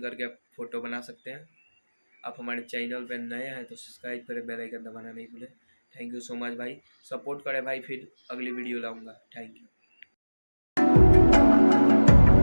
करके फ़ोटो बना सकते हैं। आप हमारे चैनल पर नए हैं तो सब्सक्राइब करें, बेल आइकन दबाना नहीं भूलें। थैंक यू सो मच भाई, सपोर्ट करें भाई, फिर अगली वीडियो लाऊंगा। Thank you.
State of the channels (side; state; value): both; inverted; correlation -1.00